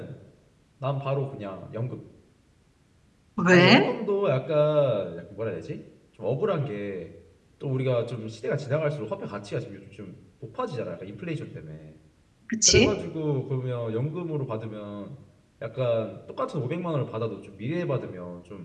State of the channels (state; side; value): identical; both; correlation 1.00